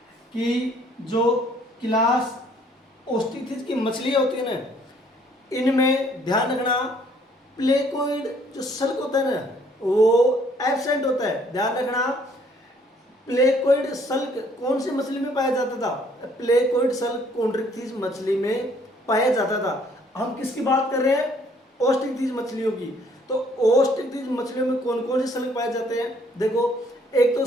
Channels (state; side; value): normal; both; correlation 0.62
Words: कि जो क्लास ओस्टिकथीज की मछलियाँ होती है ना, इनमें ध्यान रखना प्लेकोइड जो सल्क होता है ना, वो एब्सेंट होता है। ध्यान रखना प्लेकोइड सल्क कौन सी मछली में पाया जाता था, प्लेकोइड सल्क कॉन्ड्रिक्थीज मछली में पाया जाता था। हम किसकी बात कर रहे हैं, ओस्टिकथीज मछलियों की। तो ओस्टिकथीज मछलियों में कौन कौन से सल्क पाए जाते हैं, देखो एक तो